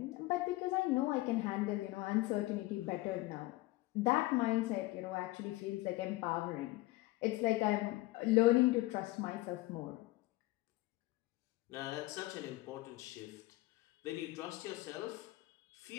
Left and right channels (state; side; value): quieter; right; 19.3 dB